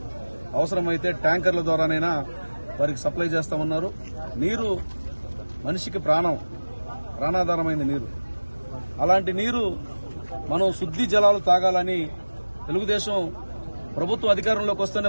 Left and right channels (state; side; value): inverted; both; correlation -1.00